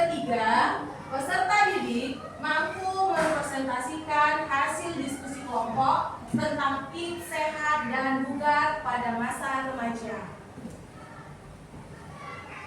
peserta didik mampu merepresentasikan hasil diskusi kelompok tentang tips sehat dan bugar pada masa remaja.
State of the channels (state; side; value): identical; both; correlation 1.00